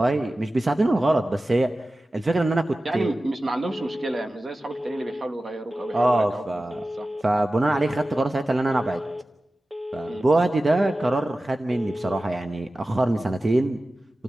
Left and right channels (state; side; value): normal; both; correlation 0.95